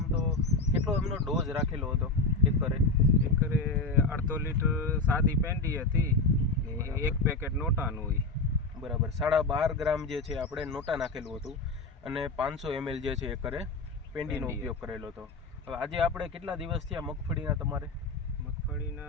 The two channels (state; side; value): quieter; right; 3.6 dB